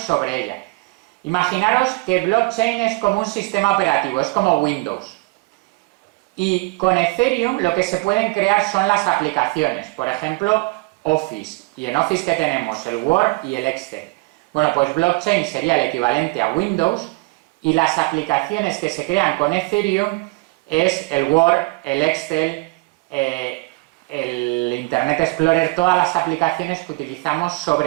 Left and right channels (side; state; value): left; quieter; 26.0 dB